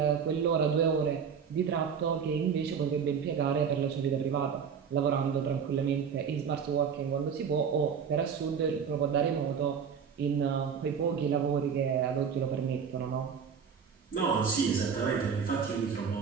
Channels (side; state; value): left; quieter; 6.9 dB